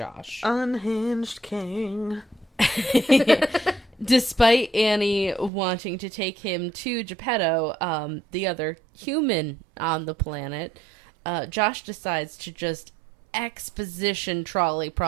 Unhinged king. Despite Annie wanting to take him to Geppetto, the other human on the planet, Josh decides to just exposition trolley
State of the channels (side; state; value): left; drops out; at 5.5 s